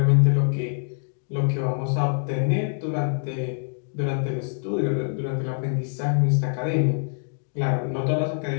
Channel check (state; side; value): silent; right; digital silence